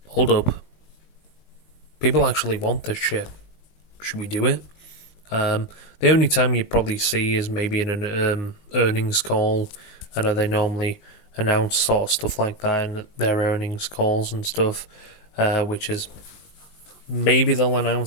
hold up, people actually want this shit. Should we do it? The only time you probably see is maybe in an earnings call. I know they normally announce sort of stuff like that in their earnings calls and stuff, which is maybe they'll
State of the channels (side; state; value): right; late; 19 ms